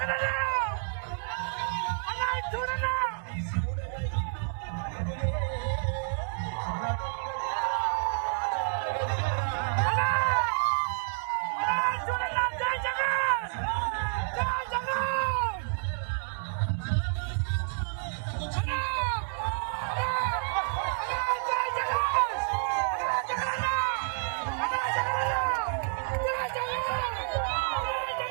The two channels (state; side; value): silent; left; digital silence